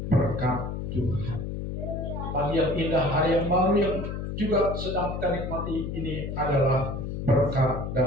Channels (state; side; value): noise; left; hum, 5 dB below the sound